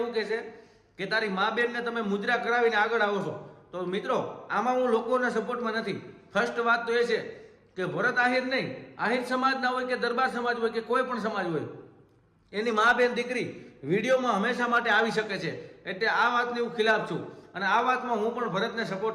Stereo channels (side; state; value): both; identical; correlation 1.00